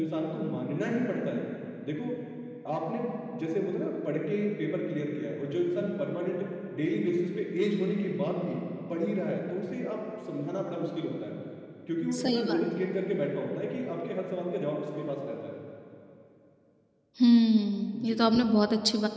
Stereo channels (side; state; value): both; identical; correlation 1.00